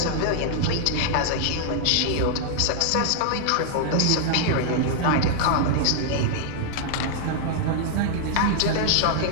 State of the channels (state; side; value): different; both; correlation -0.01